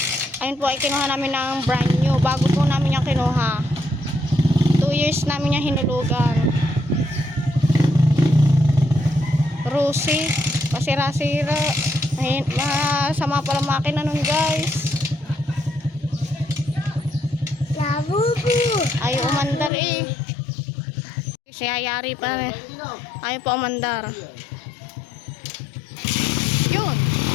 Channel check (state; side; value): drops out; right; at 19.7 s